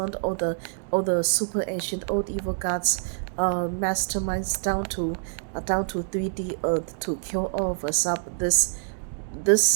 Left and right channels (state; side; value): silent; left; digital silence